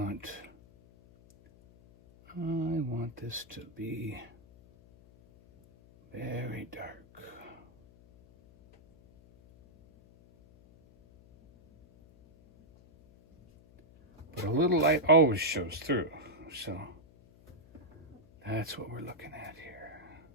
this to be very dark. But a little light always shows through. So that's what we're looking at here.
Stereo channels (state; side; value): noise; left; hum, 25 dB below the sound